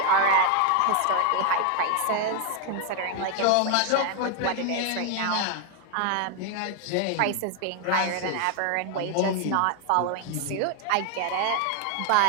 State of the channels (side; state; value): both; different; correlation 0.01